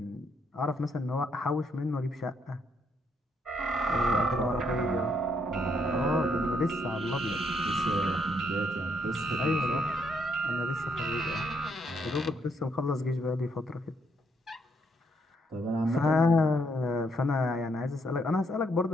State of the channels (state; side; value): normal; both; correlation 0.74